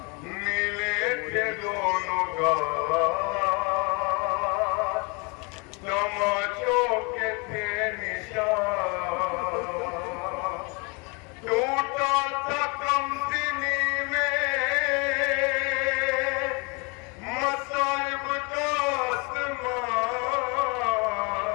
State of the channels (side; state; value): right; quieter; 30.7 dB